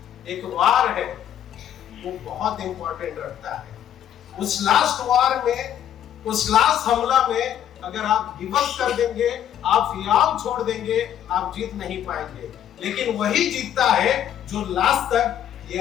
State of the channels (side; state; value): right; quieter; 10.4 dB